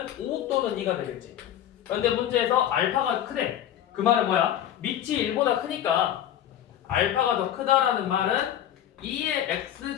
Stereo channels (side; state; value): right; quieter; 11.1 dB